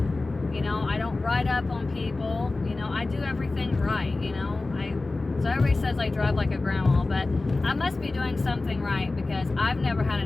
I don't ride up on people, I do everything right, so everybody says I drive like a grandma, but I must be doing something right because I've never had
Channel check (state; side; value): quieter; right; 3.3 dB